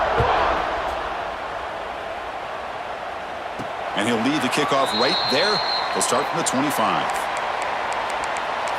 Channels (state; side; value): identical; both; correlation 1.00